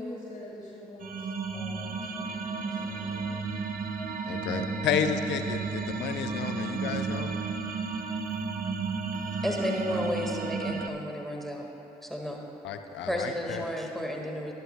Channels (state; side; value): normal; both; correlation 0.55